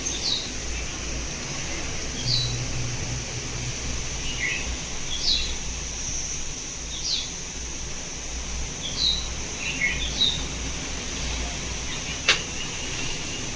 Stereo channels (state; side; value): identical; both; correlation 1.00